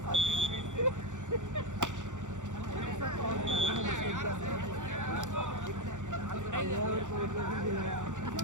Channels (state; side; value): late; left; 0.86 ms